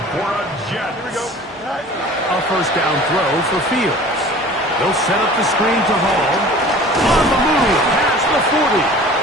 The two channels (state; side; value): normal; both; correlation 0.44